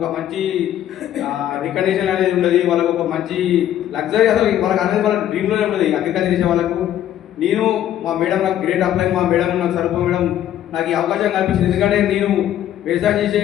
మంచి రికగ్నిషన్ అనేది ఉండదు. వాళ్ళకి ఒక మంచి లగ్జరీ అసలు వాళ్ళకి అనేది వాళ్ళ డ్రీమ్లోనే ఉండదు అగ్రికల్చర్ చేసే వాళ్ళకు. నేను మా మేడం నాకు గ్రేట్ అప్లై, మా మేడం నాకు సరిపో మేడం నాకు ఈ అవకాశం కల్పించింది. ఎందుకంటే నేను వ్యవసాయం చేసే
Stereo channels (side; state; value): right; quieter; 11.5 dB